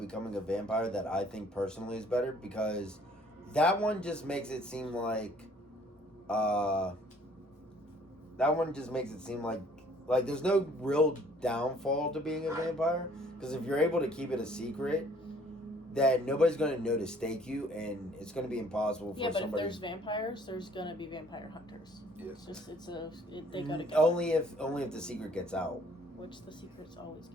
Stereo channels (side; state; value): both; normal; correlation 0.58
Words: a vampire that I think personally is better because that one just makes it seem like like there's no real downfall to being a vampire because if you're able to keep it a secret, then nobody's going to know to stake you, and it's going to be impossible for Yeah, but if somebody. there's vampires, there's gonna be vampire hunters. Yes. They go together. only if the secret gets out. Which the secrets always